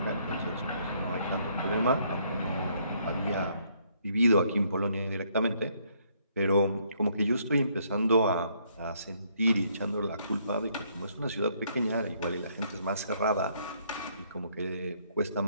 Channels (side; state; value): both; inverted; correlation -0.69